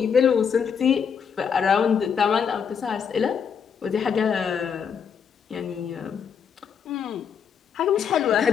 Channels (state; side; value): quieter; right; 7.0 dB